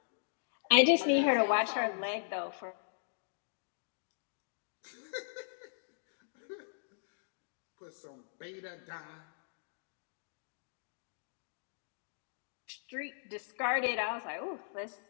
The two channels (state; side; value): silent; right; digital silence